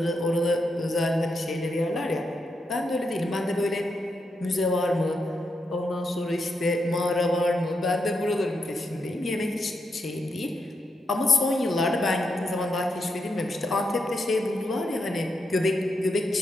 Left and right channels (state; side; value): normal; both; correlation 0.83